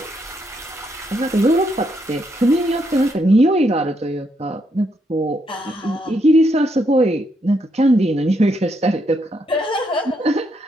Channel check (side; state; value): both; normal; correlation 0.77